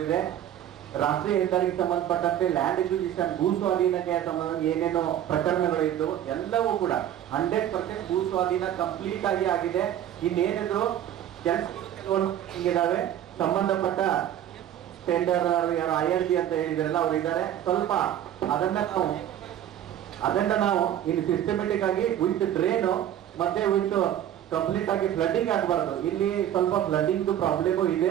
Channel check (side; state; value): left; quieter; 11.0 dB